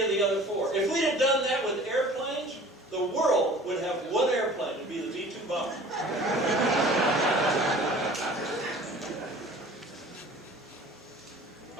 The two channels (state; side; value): normal; both; correlation 0.46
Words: of the other 4. If we'd have done that with airplanes, the world would have one airplane. It would be the V-2 bomber.